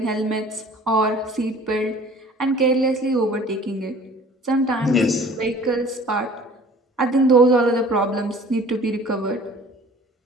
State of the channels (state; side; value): normal; both; correlation 0.48